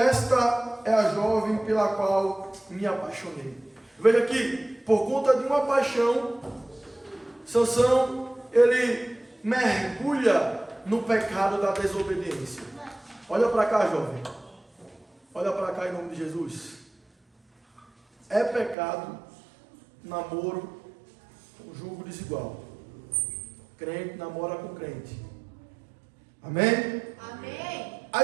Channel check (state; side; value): drops out; left; at 18.8 s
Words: é a jovem pela qual me apaixonei. Veja aqui, por conta de uma paixão, Sansão, ele mergulha no pecado da desobediência. Olha para cá, jovem. Olha para cá em nome de Jesus. É pecado namoro com jugo desigual. Crente namora com crente. Amém? Amém.